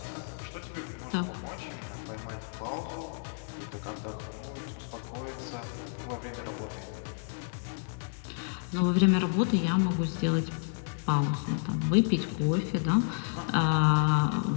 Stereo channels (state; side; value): silent; right; digital silence